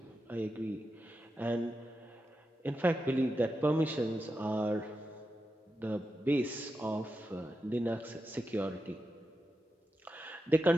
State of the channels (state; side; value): normal; both; correlation 0.88